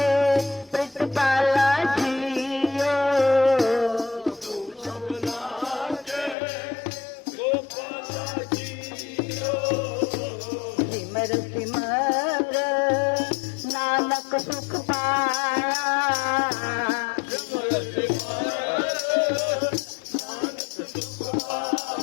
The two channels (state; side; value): drops out; right; at 6.4 s